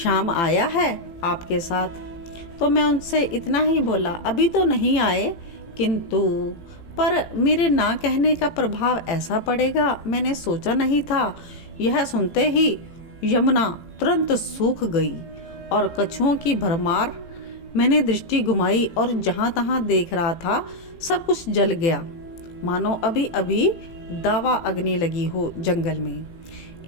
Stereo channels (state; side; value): late; right; 18 ms